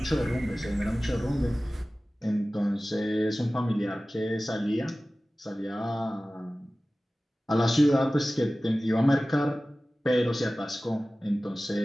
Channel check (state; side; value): normal; both; correlation 0.97